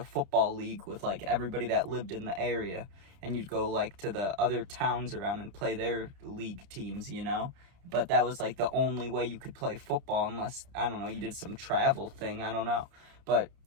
football league with like everybody that lived in the area. And you'd go like to the other towns around and play their league teams, you know? But that was like the only way you could play football unless, I don't know, you did some travel thing. I don't know. But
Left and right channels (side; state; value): left; late; 30 ms